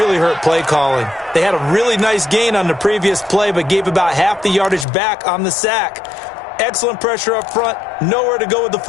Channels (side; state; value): right; drops out; at 4.9 s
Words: hurt play calling. They had a really nice gain on the previous play, but gave about half the yardage back on the sack. Excellent pressure up front. Nowhere to go with the